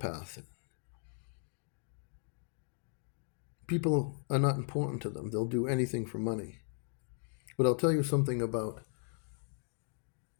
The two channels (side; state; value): right; silent; 53 dB below the other